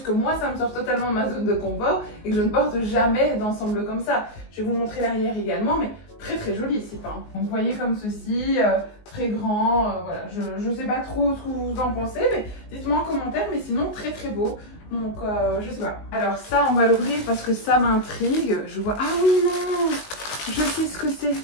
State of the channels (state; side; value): late; right; 19 ms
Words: que moi, ça me sort totalement de ma zone de confort et que je ne porte jamais d'ensemble comme ça. Je vais vous montrer l'arrière également, mais très très joli ici, hein. Donc vous voyez comme ceci, très grand, voilà, je sais pas trop ce que vous en pensez, mais dites-moi en commentaire, mais sinon très très beau. Donc je sais pas. Alors ça on va l'ouvrir parce que ça m'intrigue. Je vois, ah oui non, je sais ce que c'est.